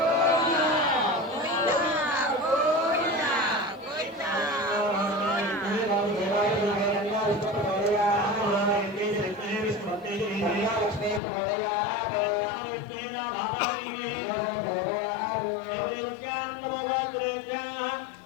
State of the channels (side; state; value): right; drops out; at 11.2 s